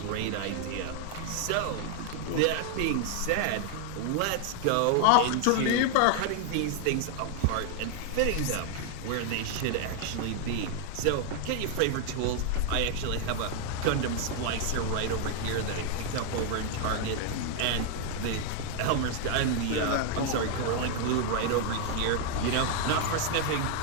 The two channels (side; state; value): both; different; correlation 0.00